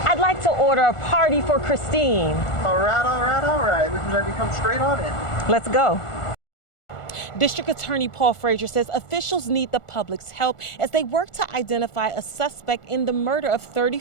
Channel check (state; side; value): late; right; 1.4 ms